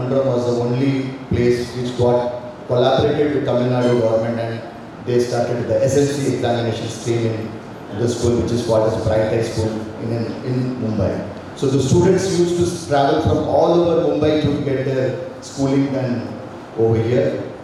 was the only place which got collaborated with Tamil Nadu government, and they started the SLC examination stream in the school, which is called as Bright High School in Mumbai. So the students used to travel from all over Mumbai to get their schooling done over here.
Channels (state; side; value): identical; both; correlation 1.00